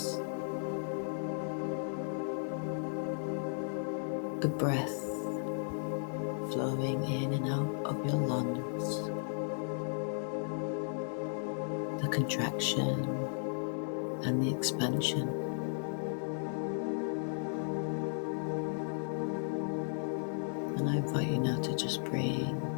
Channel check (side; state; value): right; silent; digital silence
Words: The breath flowing in and out of your lungs. The contraction and the expansion. And I invite you now to just bring